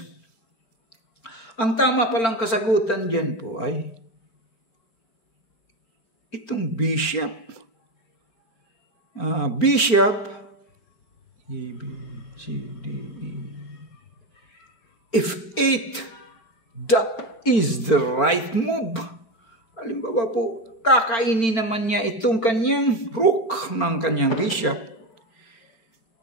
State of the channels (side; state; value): right; late; 4.4 ms